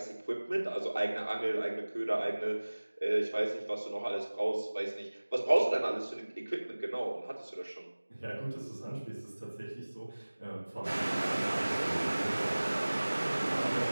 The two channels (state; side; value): inverted; both; correlation -1.00